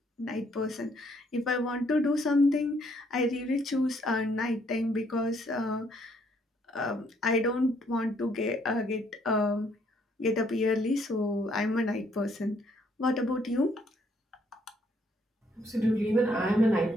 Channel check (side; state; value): both; normal; correlation 0.68